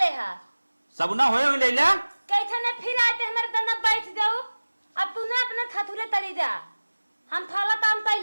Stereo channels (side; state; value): both; inverted; correlation -1.00